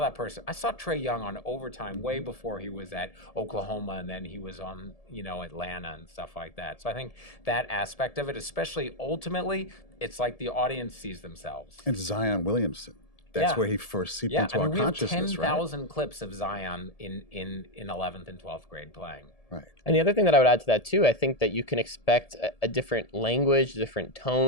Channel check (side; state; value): right; late; 1.7 ms